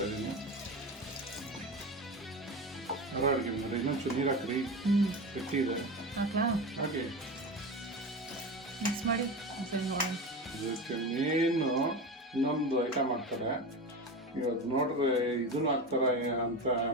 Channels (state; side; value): normal; both; correlation 0.25